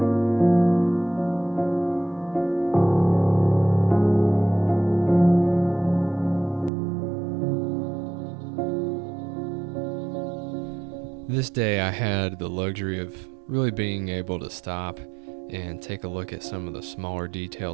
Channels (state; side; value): drops out; left; at 6.7 s